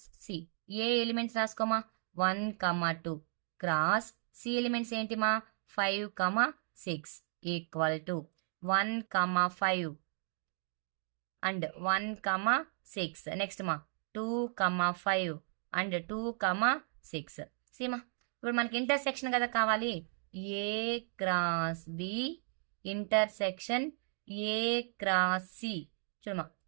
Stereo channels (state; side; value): silent; left; digital silence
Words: C A elements రాసుకోమా 1, 2 క్రాస్ సి ఎలిమెంట్స్ ఏంటిమా 5, 6 ఈక్వల్ టు 1, 5 అండ్ 1, 6. నెక్స్ట్ మా 2, 5 అండ్ 2, 6 సీమా. ఇప్పుడు మనకి ఇంటర్సెక్షన్ కదా కావాలి. A cross B intersection A cross C. చూడమా